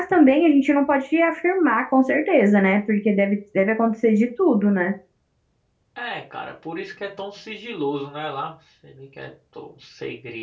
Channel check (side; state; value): both; identical; correlation 1.00